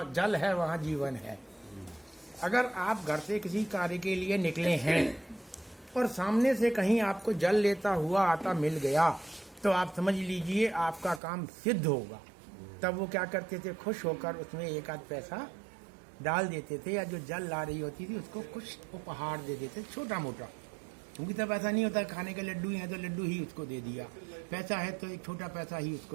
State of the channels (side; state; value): left; drops out; at 11.2 s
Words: जल है वहाँ जीवन है। अगर आप घर से किसी कार्य के लिए निकले हैं और सामने से कहीं आपको जल लेता हुआ आता मिल गया, तो आप समझ लीजिए आपका काम सिद्ध होगा। तब वो क्या करते थे, खुश होकर उसमें एक आध पैसा डाल देते थे, या जो जल ला रही होती थी उसको कुछ उपहार दे देते, छोटा मोटा। क्योंकि तब ऐसा नहीं होता खाने के लड्डू हैं तो लड्डू ही उसको दे दिया, पैसा है तो एक छोटा पैसा ही